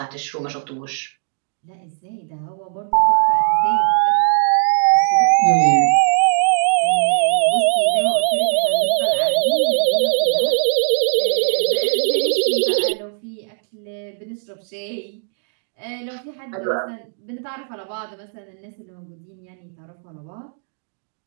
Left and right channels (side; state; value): left; silent; 66 dB below the other